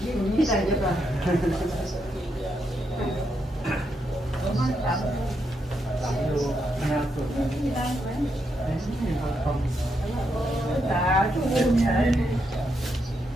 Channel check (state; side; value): normal; both; correlation 0.81